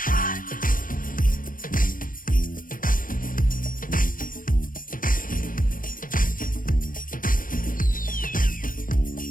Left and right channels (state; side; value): late; right; 0.40 ms